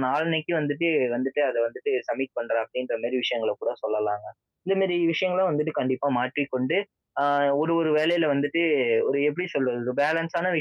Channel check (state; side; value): identical; both; correlation 1.00